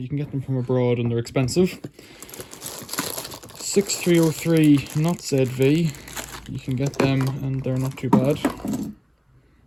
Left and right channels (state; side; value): identical; both; correlation 1.00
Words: can get them from abroad and they're expensive. 6303 not ZV, you can get them and they're not too bad.